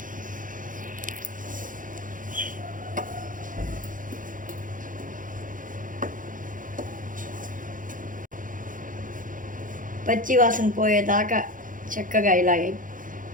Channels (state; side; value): late; left; 0.39 ms